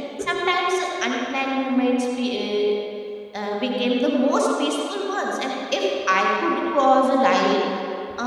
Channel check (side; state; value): both; identical; correlation 1.00